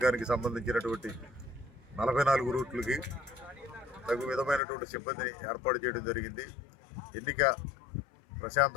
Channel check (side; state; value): right; drops out; at 4.6 s